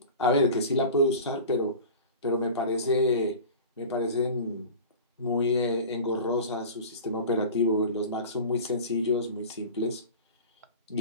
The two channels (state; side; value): inverted; both; correlation -0.35